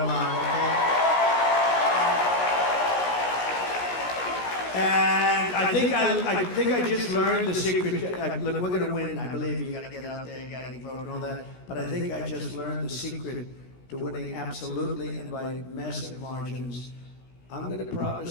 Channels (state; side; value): late; right; 16 ms